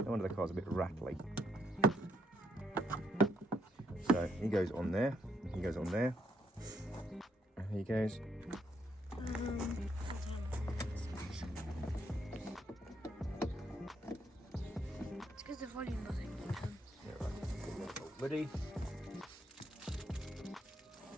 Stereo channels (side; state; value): both; normal; correlation 0.74